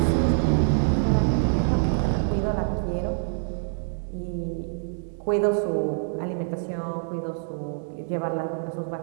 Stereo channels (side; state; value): left; silent; digital silence